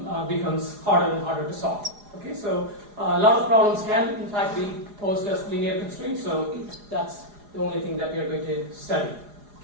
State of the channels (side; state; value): left; late; 4.9 ms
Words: becomes harder and harder to solve. Okay, so a lot of problems can in fact be posed as linear constraints, so that's the only thing that we are going to study.